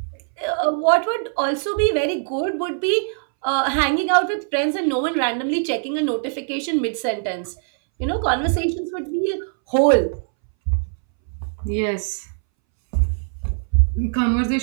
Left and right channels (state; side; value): silent; left; 63 dB below the other